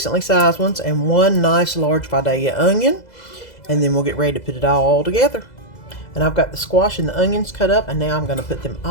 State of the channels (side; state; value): right; late; 2.0 ms